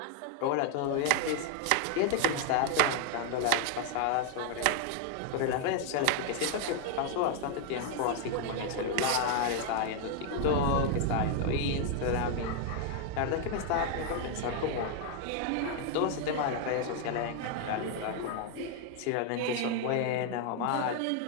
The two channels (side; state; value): both; different; correlation 0.00